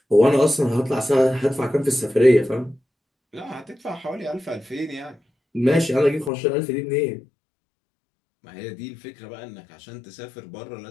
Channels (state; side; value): drops out; right; at 6.3 s